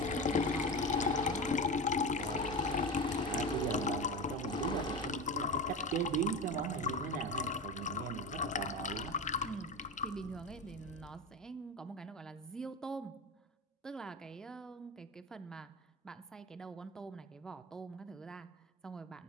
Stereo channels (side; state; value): both; normal; correlation 0.25